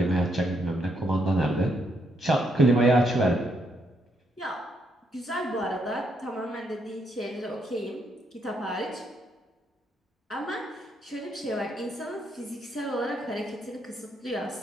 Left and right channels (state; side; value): normal; both; correlation 0.76